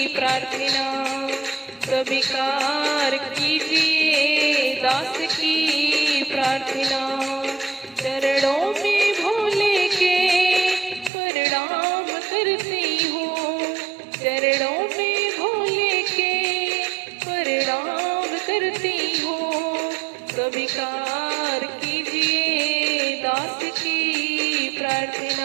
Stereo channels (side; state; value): left; drops out; at 11.1 s